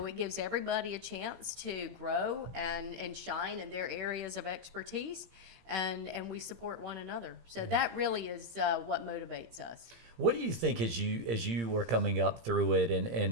it gives everybody a chance to grow and shine in their areas of expertise, and we support one another. So that really is what motivates us. What do you think as you were coming up through it,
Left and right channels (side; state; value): left; late; 17 ms